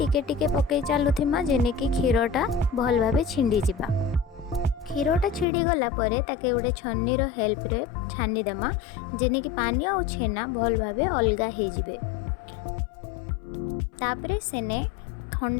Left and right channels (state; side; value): drops out; right; at 5.5 s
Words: टिके पकई चालुथिमा जेने कि क्षीरटा भल भाबे छिंडी जिबा। क्षीरटा छिड़ी गला परे ताके उडे छन्नी रो हेल्प रे छानी देमा जेने कि पानी और छेना भल भाबे अलगा हे जिबे। तापरे सेने